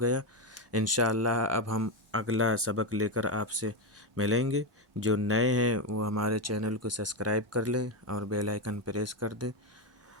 گیا۔ انشاءاللہ اب ہم اگلا سبق لے کر آپ سے ملیں گے۔ جو نئے ہیں وہ ہمارے چینل کو سبسکرائب کر لیں اور بیل آئیکن پریس کر دیں،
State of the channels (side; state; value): both; normal; correlation 0.08